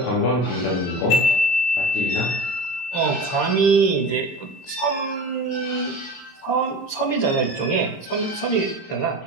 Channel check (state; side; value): late; right; 23 ms